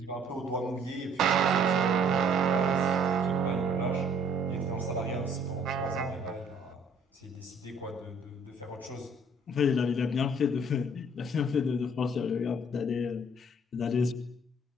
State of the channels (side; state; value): both; normal; correlation 0.59